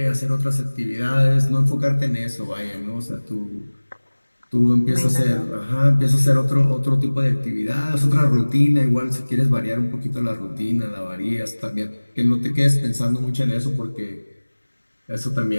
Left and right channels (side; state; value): both; inverted; correlation -1.00